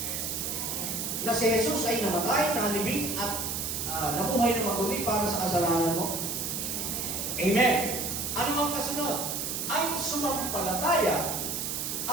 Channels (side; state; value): right; noise; hiss, 3 dB below the sound